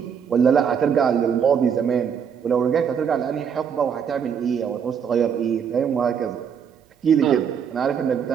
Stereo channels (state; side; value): quieter; left; 7.4 dB